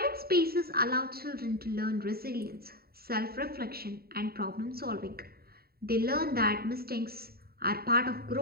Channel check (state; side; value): late; left; 0.45 ms